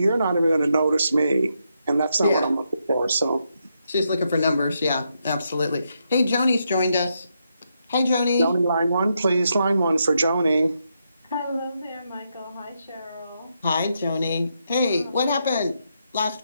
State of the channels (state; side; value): inverted; both; correlation -0.81